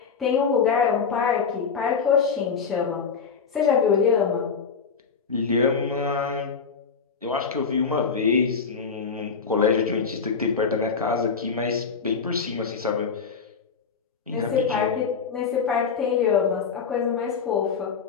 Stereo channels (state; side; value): quieter; right; 5.7 dB